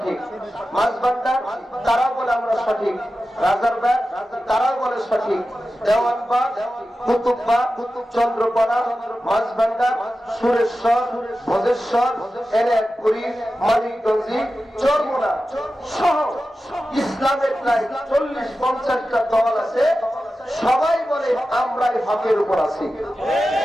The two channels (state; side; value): normal; both; correlation 0.93